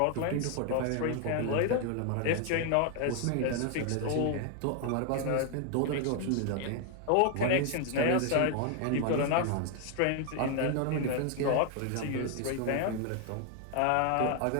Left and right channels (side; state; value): both; different; correlation 0.00